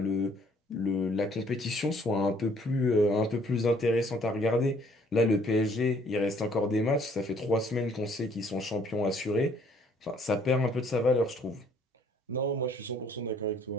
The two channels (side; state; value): both; normal; correlation 0.61